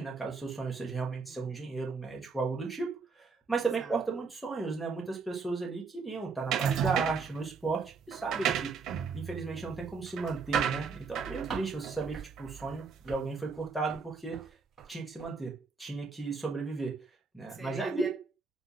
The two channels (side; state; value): left; quieter; 4.8 dB